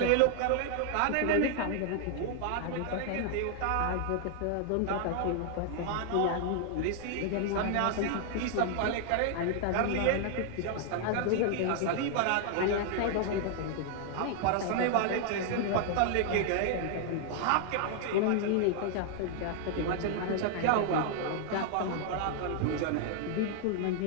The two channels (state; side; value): different; both; correlation 0.00